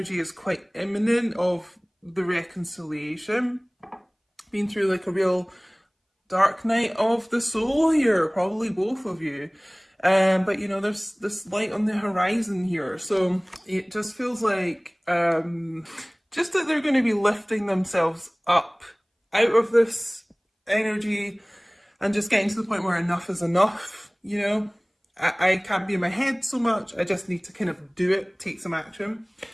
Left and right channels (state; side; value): identical; both; correlation 1.00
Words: is quite imminent of the reconciliation. Been through like a real dark night of the soul here, probably both of you. But you know, there's this light on the horizon here. So it just feels like just that they're going to be lifting themselves up out of this energy and just getting to the point where enough is enough, you know. I can't be in my head so much. I just need to kind of do it, take some action.